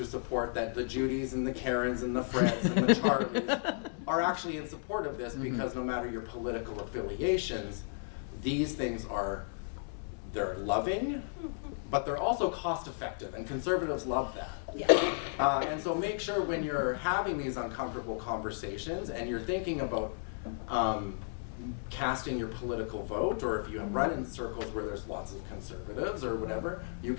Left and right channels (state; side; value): silent; right; digital silence